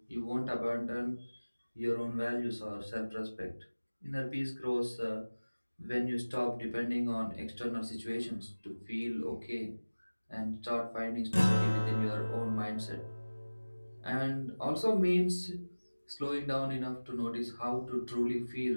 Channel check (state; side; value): inverted; both; correlation -1.00